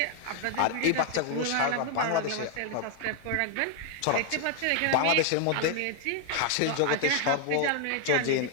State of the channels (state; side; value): different; both; correlation 0.00